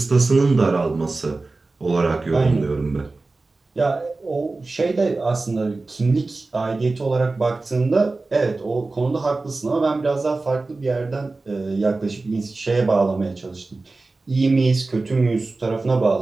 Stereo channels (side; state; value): left; quieter; 3.5 dB